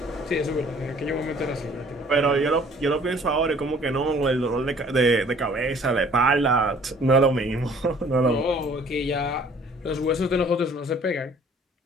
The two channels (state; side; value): normal; both; correlation 0.55